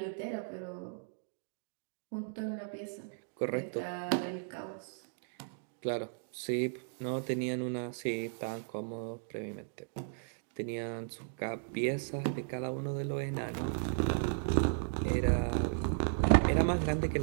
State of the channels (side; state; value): left; silent; digital silence